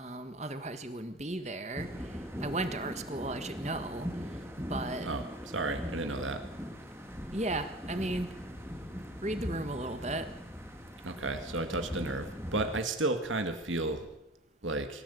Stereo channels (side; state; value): both; normal; correlation 0.39